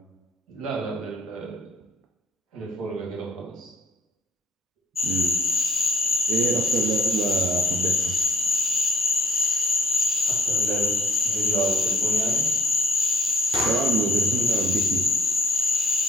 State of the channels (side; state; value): both; normal; correlation 0.63